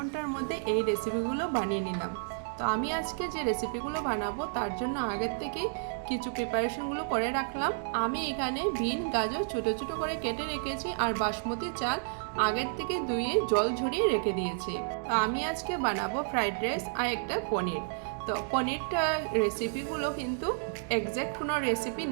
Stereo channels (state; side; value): silent; left; digital silence